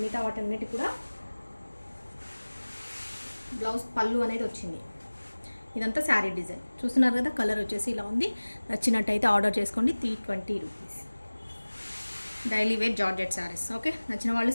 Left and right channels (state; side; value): inverted; both; correlation -1.00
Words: మిగతా వాటన్నిటి కూడా బ్లౌజ్ పళ్ళు అనేది వచ్చింది. ఇదంతా శారీ డిజైన్. చూస్తున్నారు కదా, కలర్ వచ్చేసి ఇలా ఉంది. నచ్చినట్టయితే ఆర్డర్ చేసుకోండి. 320 rupees. Daily wear georgette sarees. Okay, నచ్చిన వాళ్ళు